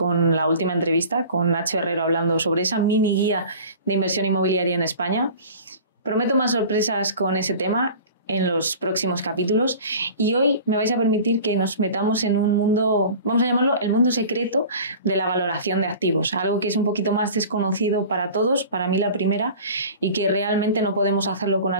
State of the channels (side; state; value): both; inverted; correlation -0.40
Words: la última entrevista con Nacho Herrero hablando sobre esa mini guía de inversión inmobiliaria en España. Prometo más sorpresas con ese tema en los próximos capítulos y hoy me vais a permitir que nos metamos en un mundo, vamos a llamarlo el mundo secreto de la valoración de activos, algo que es un poquito más desconocido para todos, para mí la primera, y que realmente no podemos hacerlo con